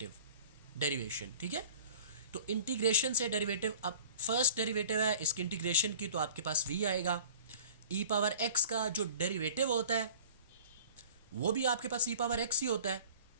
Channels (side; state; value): both; inverted; correlation -0.46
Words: ठीक है। तो इंटीग्रेशन से डेरिवेटिव, अब फर्स्ट डेरिवेटिव है इसकी इंटीग्रेशन की, तो आपके पास v आएगा। e पावर x का जो डेरिवेटिव होता है वो भी आपके पास e पावर x ही होता है,